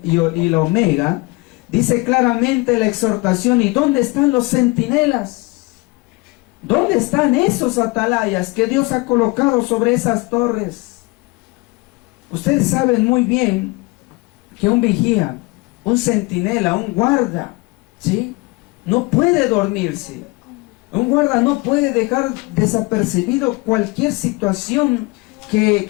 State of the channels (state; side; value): quieter; right; 24.4 dB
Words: y la omega, dice claramente la exhortación, ¿y dónde están los centinelas? ¿Dónde están esos atalayas que Dios ha colocado sobre esas torres? Ustedes saben muy bien que un vigía, un centinela, un guarda, ¿sí?, no puede dormirse. Un guarda no puede dejar desapercibido cualquier situación